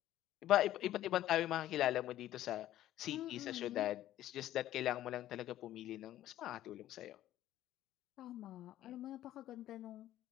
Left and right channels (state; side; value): quieter; right; 13.4 dB